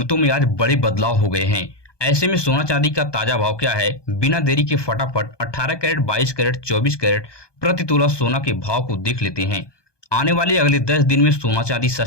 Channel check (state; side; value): late; right; 1.2 ms